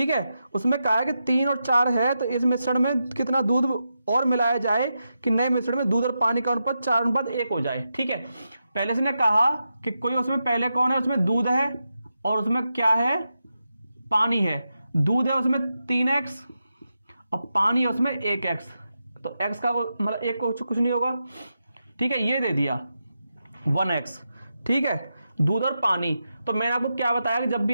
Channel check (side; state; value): both; inverted; correlation -0.88